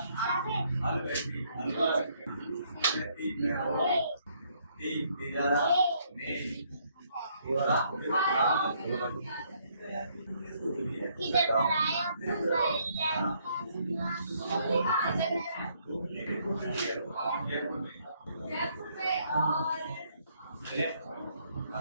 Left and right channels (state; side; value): inverted; both; correlation -0.69